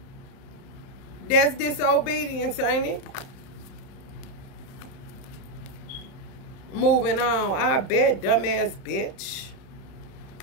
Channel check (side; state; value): right; late; 31 ms